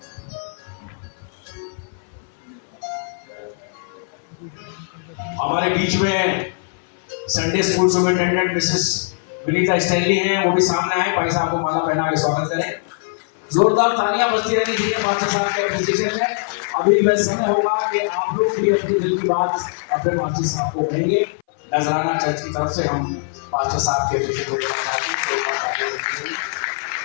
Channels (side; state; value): right; silent; 60 dB below the other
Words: हमारे बीच में Sunday school superintendent Mrs Vinita Stanley हैं, वो भी सामने आए, भाई साहब को माला पहना के स्वागत करें। जोरदार तालियां बजती रहनी चाहिए पास्टर साहब के एप्रिसिएशन में। अभी वह समय होगा कि आप लोग भी अपनी दिल की बात अपने पास्टर साहब को कहेंगे। नजराना चर्च की तरफ से हम पास्टर साहब के एप्रिसिएशन को चाहते हैं।